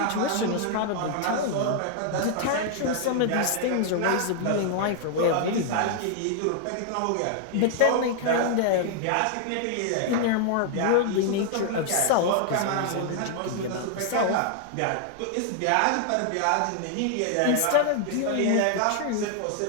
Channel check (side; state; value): both; different; correlation 0.00